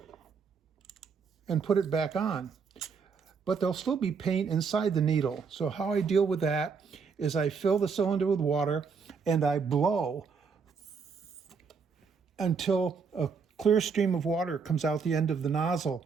and put it back on. But there'll still be paint inside the needle. So how I deal with that is I fill the cylinder with water and I blow until a clear stream of water comes out the end of the nozzle.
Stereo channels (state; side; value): quieter; left; 5.5 dB